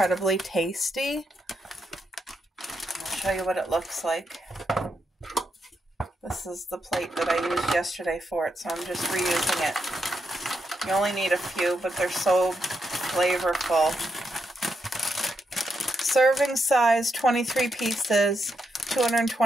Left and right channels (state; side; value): normal; both; correlation 0.82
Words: tasty. I'll show you what it looks like. This is the plate that I used yesterday for it, so I'm just reusing it. You only need a few, but they're so flavorful. Serving size, 23 pieces,